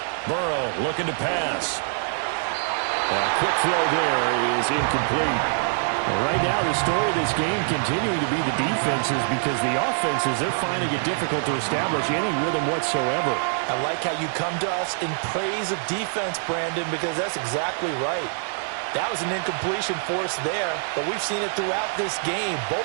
Burrow looking to pass. A quick throw there is incomplete. Right now, the story of this game continuing to be the defenses, because the offenses, they're finding it difficult to establish any rhythm whatsoever. I like how you come to us in praise of defense, Brandon, because that's exactly right. That was an incompletion forced there, but we've seen it throughout this game.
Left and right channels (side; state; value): left; silent; digital silence